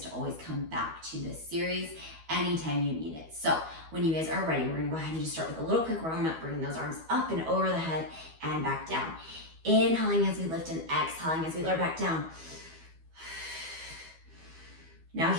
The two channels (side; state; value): left; late; 12 ms